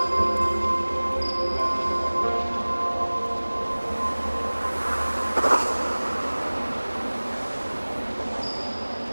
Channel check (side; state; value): both; inverted; correlation -1.00